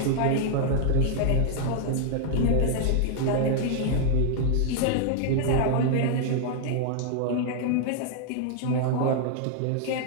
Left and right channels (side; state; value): both; different; correlation 0.00